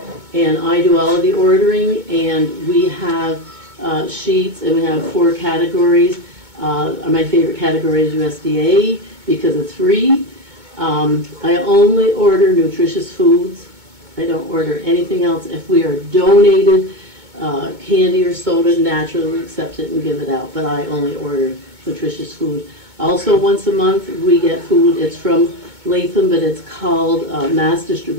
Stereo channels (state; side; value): late; left; 2.2 ms